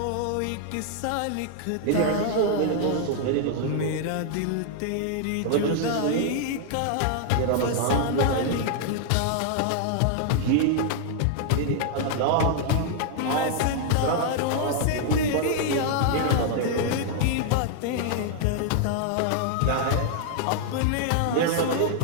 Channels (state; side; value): different; both; correlation 0.00